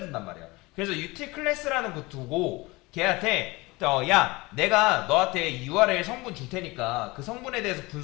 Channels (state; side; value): quieter; right; 22.9 dB